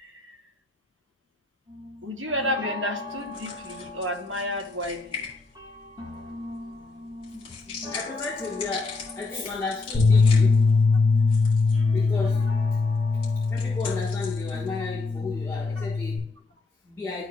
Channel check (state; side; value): quieter; right; 3.7 dB